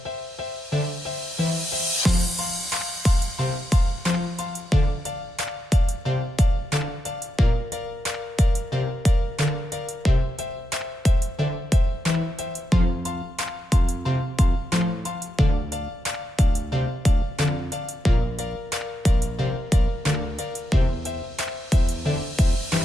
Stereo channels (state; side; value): normal; both; correlation 0.85